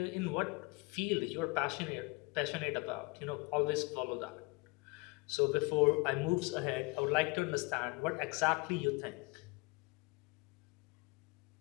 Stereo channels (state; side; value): quieter; right; 25.8 dB